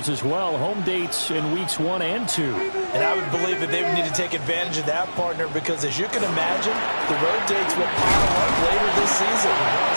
as well. Home dates in Weeks 1 and 2. And I would believe that they would need to take advantage of that, partner, because as you can imagine, the road dates will pile up later this season.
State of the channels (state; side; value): inverted; both; correlation -1.00